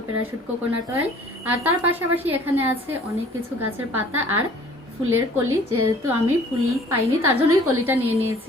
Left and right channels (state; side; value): normal; both; correlation 0.52